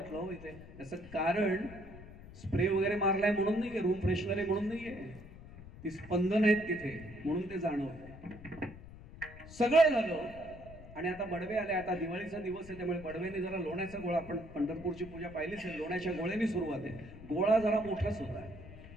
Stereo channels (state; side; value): noise; left; rumble, 16 dB below the sound